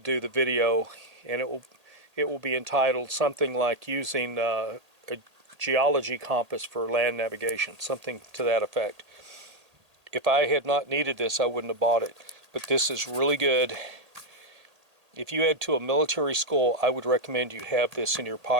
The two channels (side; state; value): left; late; 1.8 ms